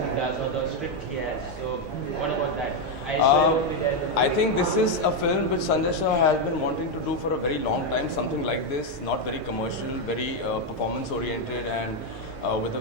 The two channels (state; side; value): normal; both; correlation 0.04